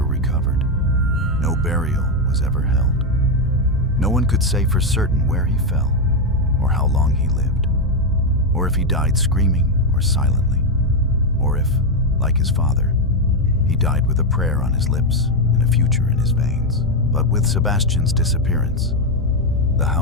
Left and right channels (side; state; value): both; normal; correlation 0.05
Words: recovered. No burial was ever held. No one could say for certain where he fell, or how long he lived, or if he died screaming or silently, or if, like his father, he died with a prayer on his lips and a future in his veins. But with Sebastian's disappearance, the